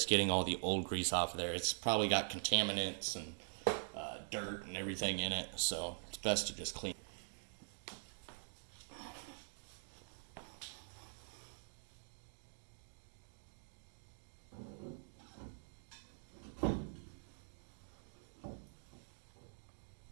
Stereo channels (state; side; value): silent; left; digital silence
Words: getting all the old grease off of there. It's probably got contaminants and dirt and everything in it, so it's best to just clean.